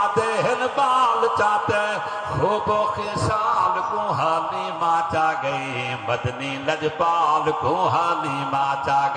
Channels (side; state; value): both; identical; correlation 1.00